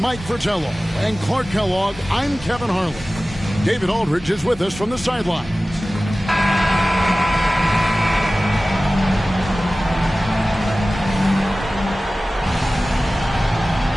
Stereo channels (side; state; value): both; normal; correlation 0.97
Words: Fratello and Clark Kellogg, I'm Kevin Harlan. David Aldridge is with us from the sidelines.